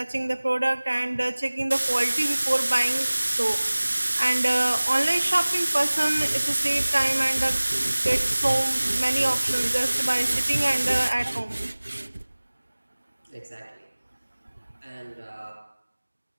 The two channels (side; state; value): both; inverted; correlation -1.00